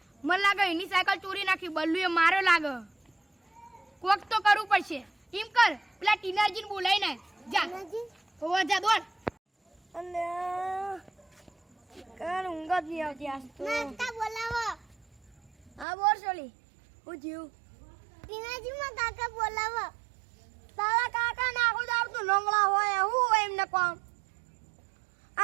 મને લાગે એની સાયકલ ચોરી નાખી બલ્લુએ માર્યો લાગે કોક તો કરવું પડશે એમ કર પેલા ટીનાજીને બોલાવી નાખ જા હોવા જા દોડ અને કાલ ઊંઘ જ નહીં આવતી આજ તો નાસ્તા બોલાવો હા બોર સોલી હું જીવ ટીનાજીમાં કાકા બોલાવો તારા કાકા નાખો તો આવતું લંગડા હોય હું હોય એમને કોમ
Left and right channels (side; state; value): left; drops out; at 15.9 s